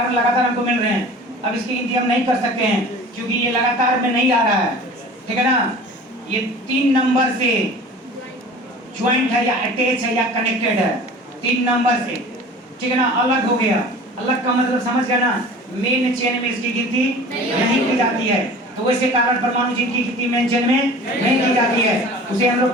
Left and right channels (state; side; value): normal; both; correlation 0.42